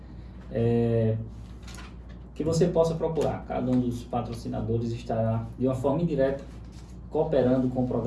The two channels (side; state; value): both; identical; correlation 1.00